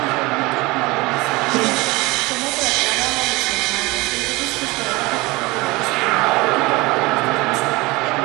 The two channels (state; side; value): quieter; left; 22.5 dB